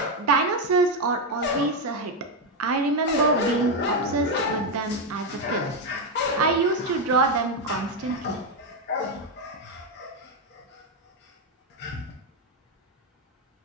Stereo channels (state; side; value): normal; both; correlation 0.06